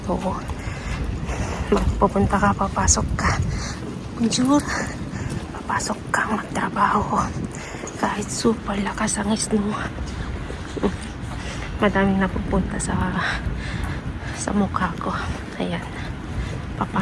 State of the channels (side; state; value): both; identical; correlation 1.00